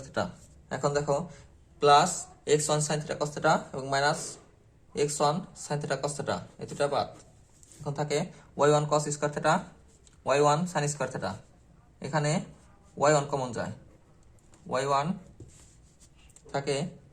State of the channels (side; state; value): both; identical; correlation 1.00